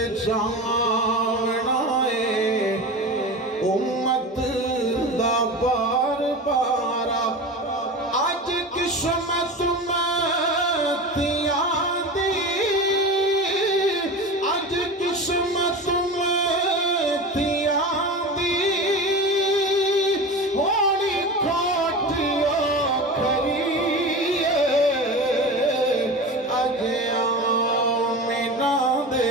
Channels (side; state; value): both; normal; correlation 0.29